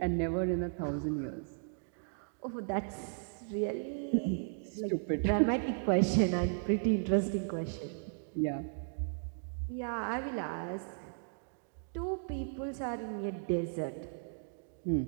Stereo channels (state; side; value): silent; left; digital silence